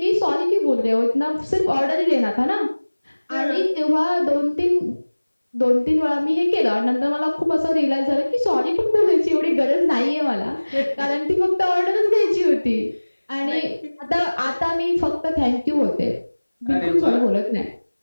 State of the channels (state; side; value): inverted; both; correlation -1.00